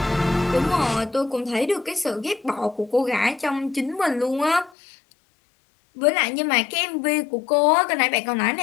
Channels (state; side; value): drops out; right; at 4.7 s